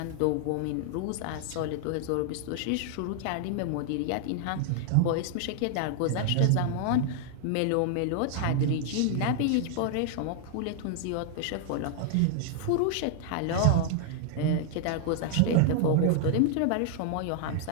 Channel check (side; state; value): both; different; correlation -0.01